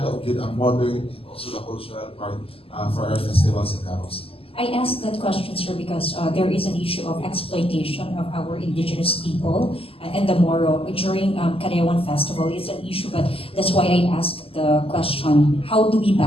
with ang modern and also the cultural part for our festivals sa Davao City. I asked that question, sir, because there is an issue of exploitation of our indigenous people and the Moro during Karayawan Festival. It's an issue, but that's why I asked the question, how do we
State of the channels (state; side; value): late; right; 0.27 ms